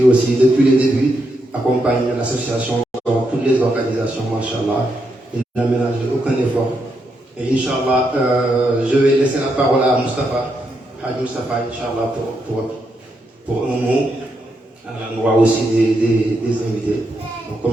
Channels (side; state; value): both; normal; correlation 0.81